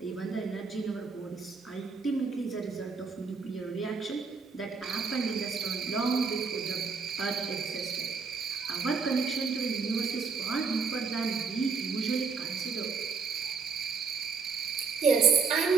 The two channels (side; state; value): left; quieter; 5.2 dB